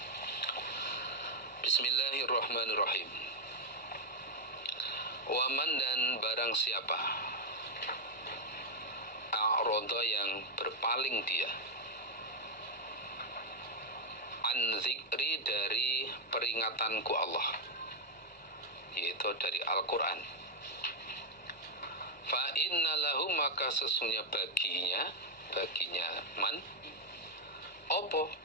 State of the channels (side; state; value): both; normal; correlation 0.00